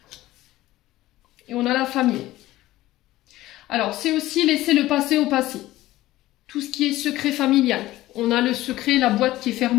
Et on a la famille. Alors, c'est aussi laisser le passé au passé. Tout ce qui est secret familial. On a le secret, la boîte qui est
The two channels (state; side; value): quieter; right; 16.3 dB